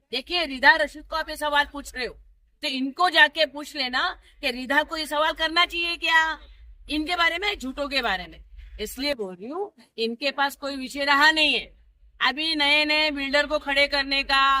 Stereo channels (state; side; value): identical; both; correlation 1.00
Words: देखिए रिधा रशीद को आप ये सवाल पूछ रहे हो, तो इनको जाके पूछ लेना कि रिधा को ये सवाल करना चाहिए क्या इनके बारे में, झूठों के बारे में। इसलिए बोल रही हूँ, इनके पास कोई विषय रहा नहीं है। अभी नए नए बिल्डर को खड़े करने